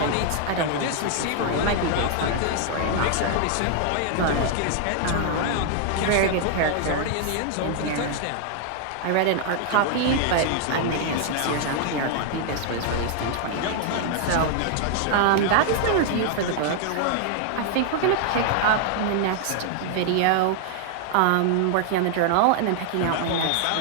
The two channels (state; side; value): different; both; correlation 0.00